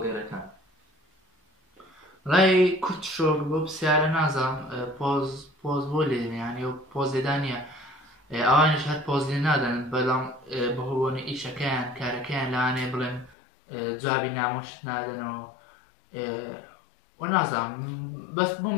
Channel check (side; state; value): right; drops out; at 13.4 s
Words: ڕای کورت شۆک بۆ پرسیارە نازانم پۆز بۆ لێنیانی و پۆز لێدانە ئەوانش هەر پۆز لێ نادەن بەڵام بەهۆبوونی ئیشەکەیان کارەکەیان لەوانەیە بڵێن جوابی نامۆشت نادەنەوە وەنازانم بەس بم